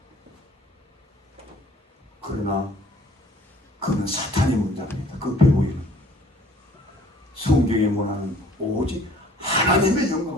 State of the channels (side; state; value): both; normal; correlation 0.54